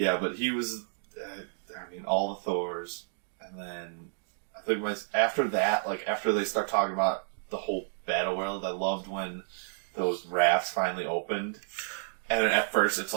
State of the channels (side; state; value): left; silent; digital silence